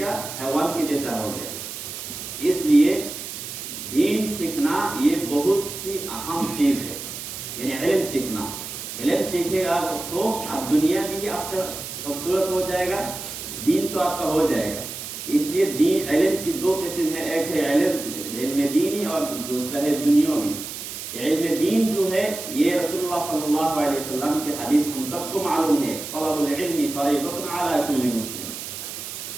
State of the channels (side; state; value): right; noise; hiss, 8 dB below the sound